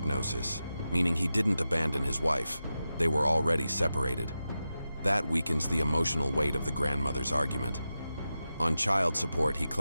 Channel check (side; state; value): both; inverted; correlation -0.92